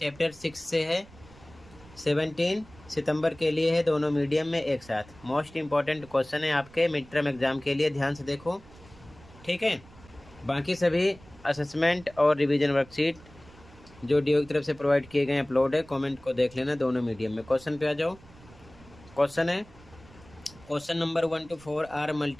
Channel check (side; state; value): right; noise; rumble, 23 dB below the sound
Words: 6 से है। 17 सितंबर के लिए है, दोनों मीडियम में एक साथ। मोस्ट इम्पॉर्टेंट क्वेश्चन है आपके मिड टर्म एग्जाम के लिए, ध्यान से देखो, ठीक है। बाकी सभी असेसमेंट और रिवीजन वर्कशीट जो डीओई की तरफ से प्रोवाइड किए गए अपलोड है, कमेंट को देख लेना दोनों मीडियम में। क्वेश्चन पे आ जाओ। क्वेश्चन है, question number 1 to 4 are